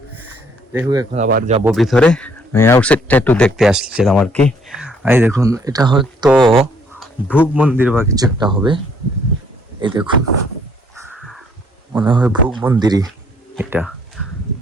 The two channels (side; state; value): both; normal; correlation 0.65